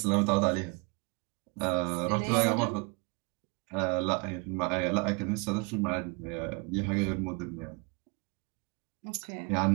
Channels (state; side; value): quieter; left; 30.3 dB